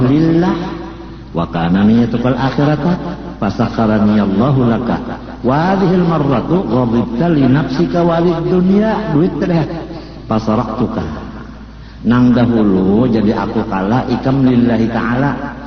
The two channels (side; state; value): both; identical; correlation 1.00